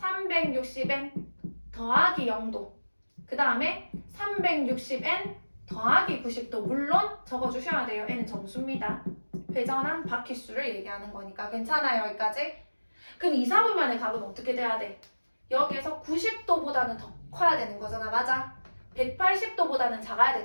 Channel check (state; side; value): inverted; both; correlation -1.00